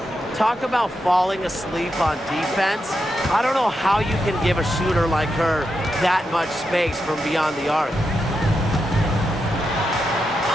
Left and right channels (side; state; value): both; normal; correlation 0.86